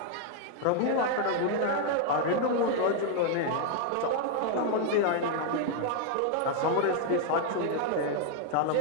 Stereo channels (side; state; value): both; different; correlation 0.00